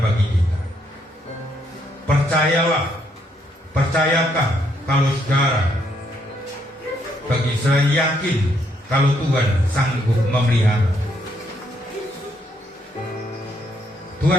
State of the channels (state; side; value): normal; both; correlation 0.73